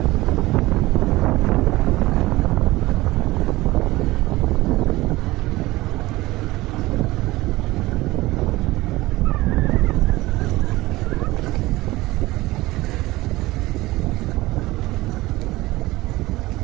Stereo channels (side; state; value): left; quieter; 19.0 dB